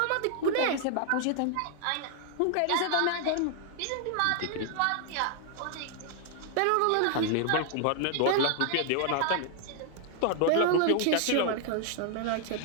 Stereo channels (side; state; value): both; different; correlation 0.00